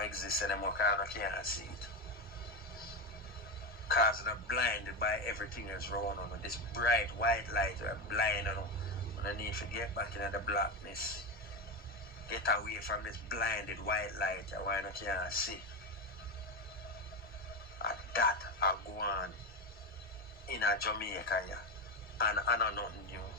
exist anymore, because I can't see it. Because they're blinded by everything that's wrong on this bright white light, they're blind on them. And I need to get back into the blackness. Get away from this blinded white light why I can't see. And that I go on in a Jamaica, yeah. And I know nothing new.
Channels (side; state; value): both; normal; correlation 0.15